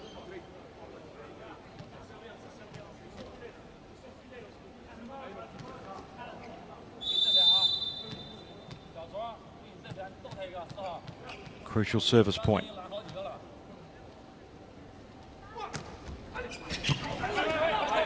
Crucial service point.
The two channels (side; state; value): both; identical; correlation 1.00